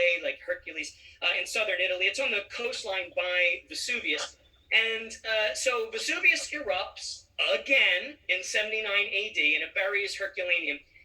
like Hercules, in southern Italy. It's on the coastline by Vesuvius. And so Vesuvius erupts again in 79 AD, and it buries Herculaneum.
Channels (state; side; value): identical; both; correlation 1.00